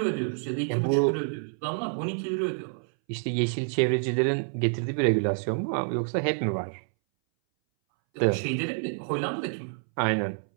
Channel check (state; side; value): silent; left; 60 dB below the other